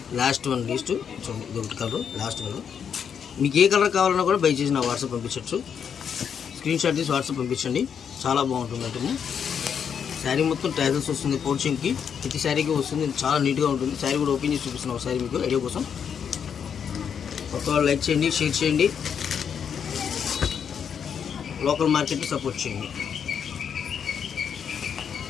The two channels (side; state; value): right; quieter; 7.5 dB